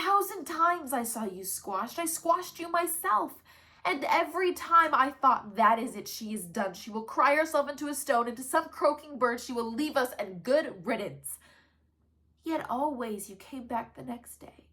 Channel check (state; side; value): identical; both; correlation 1.00